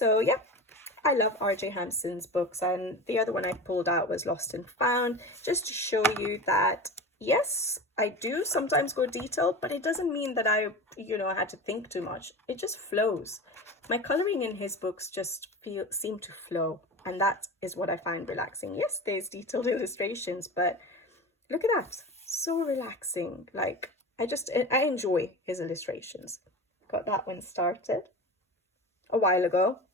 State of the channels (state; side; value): normal; both; correlation 0.30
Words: yeah, I love R.J. Hampson's books, and the other one I pulled out was Lost and Found, just to show you that, yes, I do sometimes go detailed, but it doesn't mean that I, had to think too much. It just flows. My coloring in his books just seem to flow, and that is what I find relaxing. Yes, there's detailed illustrations, but look at that. So relaxing. Like, I enjoy his illustrations. Got that one started a while ago,